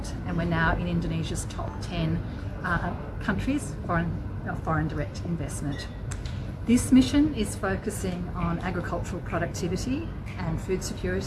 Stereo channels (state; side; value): identical; both; correlation 1.00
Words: and we're now in Indonesia's top 10 countries foreign direct investment. This mission is focusing on agricultural productivity and food